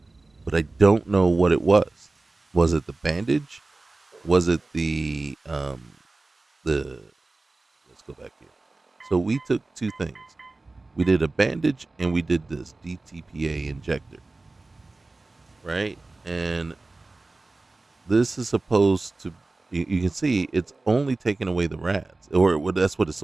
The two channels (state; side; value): quieter; left; 3.3 dB